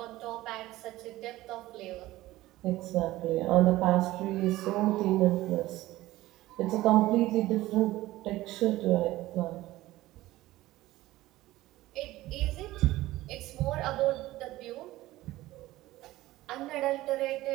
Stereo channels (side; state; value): left; quieter; 16.9 dB